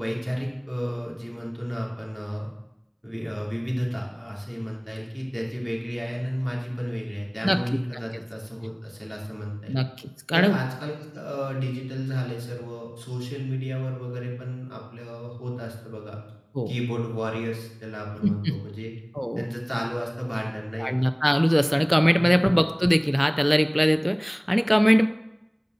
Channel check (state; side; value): identical; both; correlation 1.00